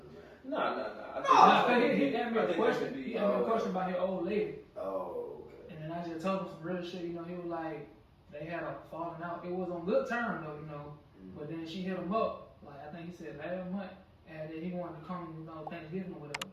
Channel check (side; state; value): both; identical; correlation 1.00